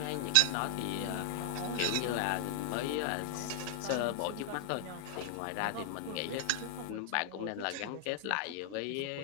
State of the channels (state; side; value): different; both; correlation 0.00